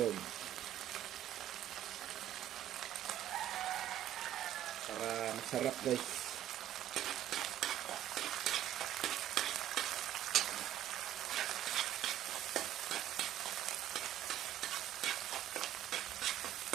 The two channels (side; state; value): left; quieter; 12.0 dB